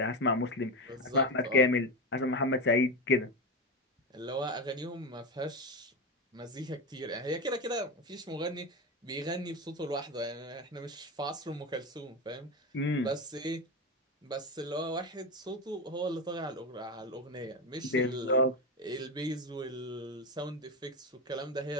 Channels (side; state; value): both; normal; correlation 0.17